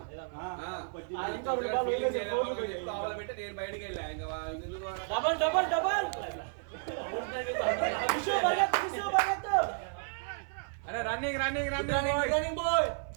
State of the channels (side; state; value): left; silent; 56 dB below the other